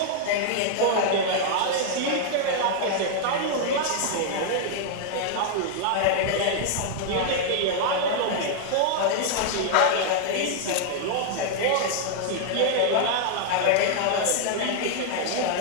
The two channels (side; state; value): both; different; correlation 0.00